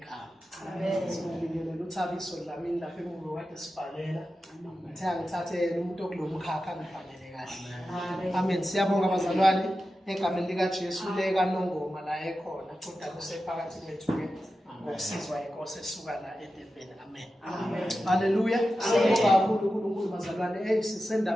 Amen. Sibingelela uThabiso Dlamini lapha emuva kade sibhalela. Ngithathe yena umuntu okulomkhakha ngibhalele kahle. Amen. Siyabonga abazalwane egameni lika Jesu leka Nongoma la ekhona kodwa kusephakathi kwethu ke ngokusizwa inkosi esuka la eDurban. Amen. Amen. Haleluya. Siyabonga kakhulu uNkulunkulu bazalwane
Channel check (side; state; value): both; normal; correlation 0.92